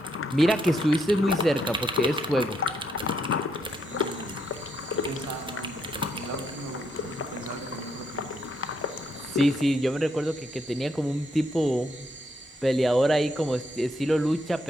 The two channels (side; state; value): both; normal; correlation 0.76